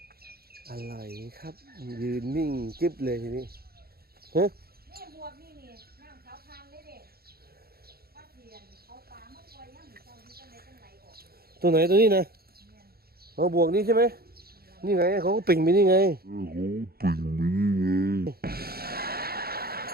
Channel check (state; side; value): late; left; 0.45 ms